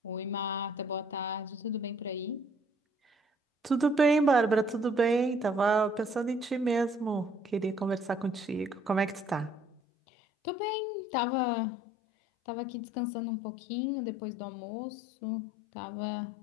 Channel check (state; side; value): drops out; right; at 9.8 s